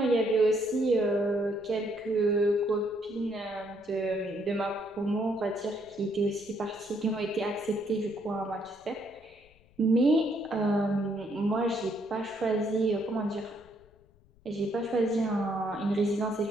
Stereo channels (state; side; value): noise; left; rumble, 29 dB below the sound